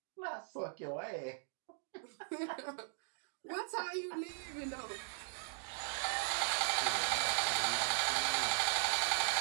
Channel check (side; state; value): left; silent; digital silence